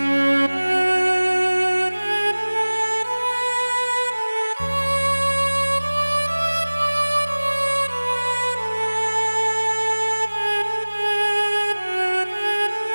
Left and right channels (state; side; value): inverted; both; correlation -1.00